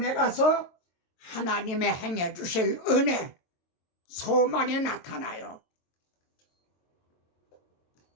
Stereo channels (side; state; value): right; late; 22 ms